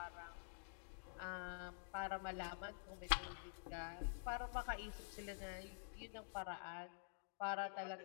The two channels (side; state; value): right; silent; digital silence